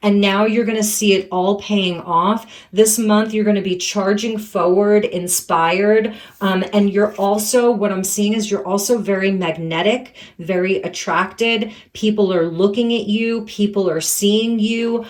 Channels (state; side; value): identical; both; correlation 1.00